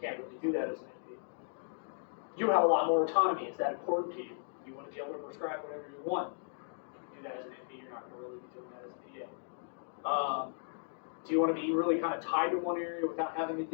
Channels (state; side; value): silent; right; digital silence